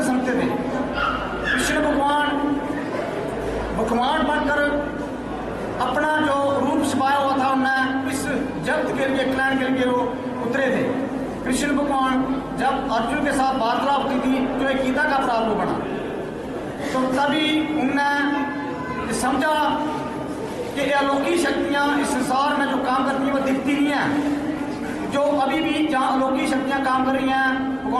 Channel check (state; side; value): identical; both; correlation 1.00